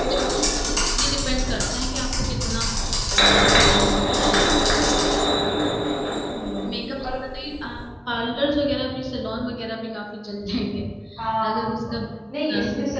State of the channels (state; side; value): identical; both; correlation 1.00